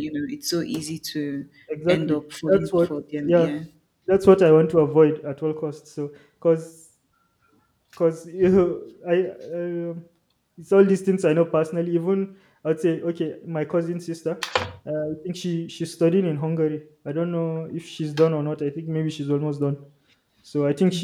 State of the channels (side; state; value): both; identical; correlation 1.00